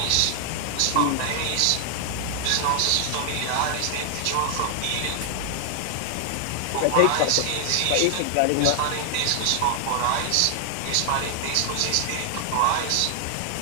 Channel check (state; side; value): different; both; correlation 0.00